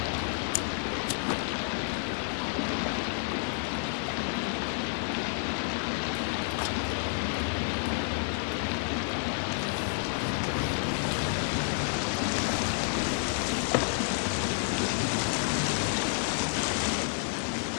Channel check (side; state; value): right; silent; 57 dB below the other